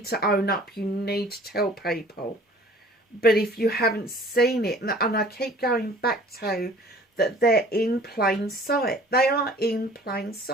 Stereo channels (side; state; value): both; normal; correlation 0.50